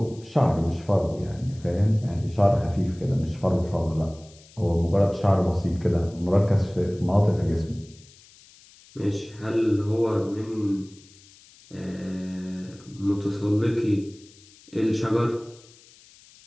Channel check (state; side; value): noise; left; hiss, 25 dB below the sound